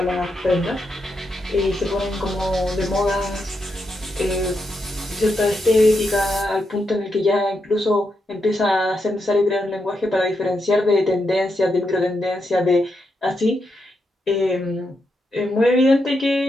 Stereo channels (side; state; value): both; normal; correlation 0.83